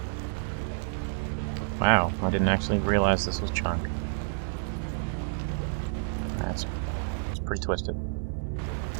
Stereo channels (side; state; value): left; silent; digital silence